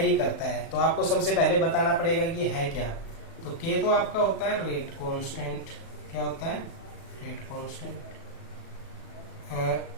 करता है। तो आपको सबसे पहले बताना पड़ेगा कि है क्या। तो k तो आपका होता है रेट कांस्टेंट। क्या होता है? Rate constant.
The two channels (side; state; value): right; late; 36 ms